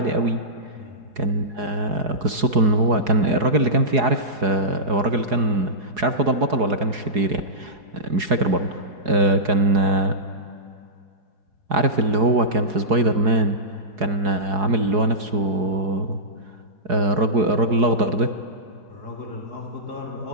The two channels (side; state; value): left; late; 4.8 ms